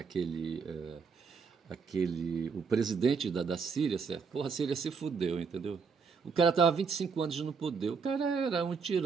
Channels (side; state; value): left; quieter; 5.5 dB